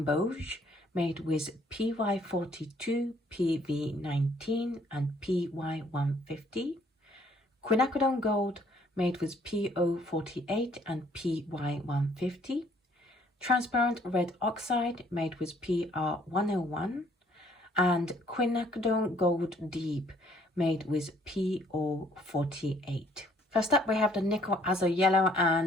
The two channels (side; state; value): both; normal; correlation 0.63